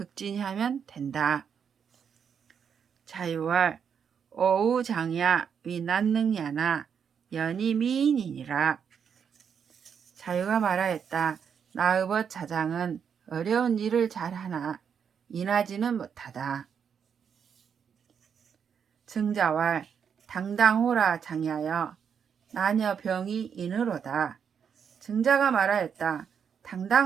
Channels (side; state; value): left; quieter; 7.3 dB